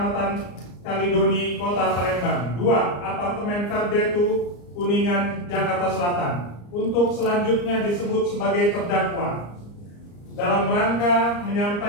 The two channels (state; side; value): late; right; 34 ms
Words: Kalidoni, Kota Palembang. 2. Apartemen Verdetu, Kuningan, Jakarta Selatan. Untuk selanjutnya disebut sebagai terdakwa dalam rangka